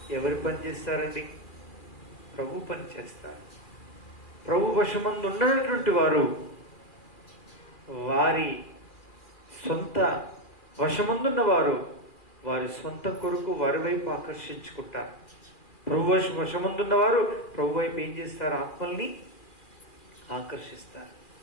ఎవరు పని చేస్తారండి? ప్రభు పని చేస్తారు. ప్రభు వశమందు ఉన్నటువంటి వారు వారి సొంత వశమందున్న వారు వారి సొంత కొరకు వారి వైపు ఆకర్షించుకుంటారు. ప్రభు వశమందున్న వారు ప్రభు వైపు ఏం చేస్తారు? ఆత్మల్ని ఆకర్షిస్తారు.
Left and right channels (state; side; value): late; right; 2.4 ms